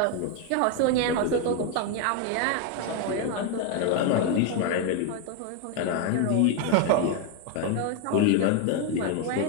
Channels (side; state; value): both; different; correlation 0.01